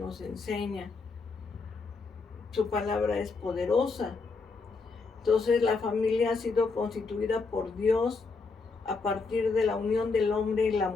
enseña. Su palabra es poderosa. Entonces la familia ha sido constituida por Dios a partir de la unión del hombre y la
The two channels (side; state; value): right; quieter; 4.3 dB